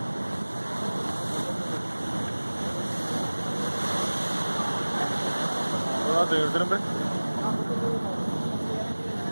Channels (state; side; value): inverted; both; correlation -1.00